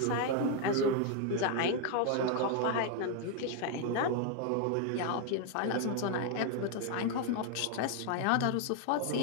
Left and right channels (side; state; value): both; different; correlation 0.00